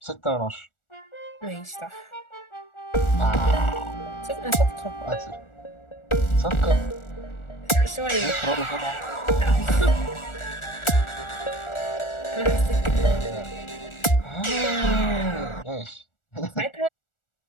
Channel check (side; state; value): right; late; 1.4 ms